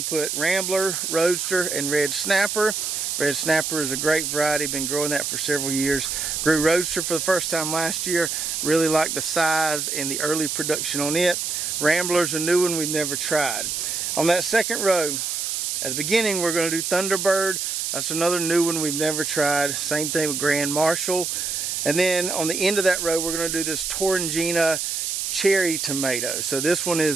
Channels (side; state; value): right; noise; hiss, 2 dB below the sound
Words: to put Rambler, Roadster, and Red Snapper. Red Snapper is a great variety, been growing that for several years. Grew Roadster for the first time last year. Really like the size and the early production on it. Rambler's a new one we've never tried. On that second row, at the beginning, we're going to do Thunderbird. That's another new one we've never tried. Same thing with Grand Marshal. And then on the end of that row, we're going to do this Torringina cherry tomato. So this one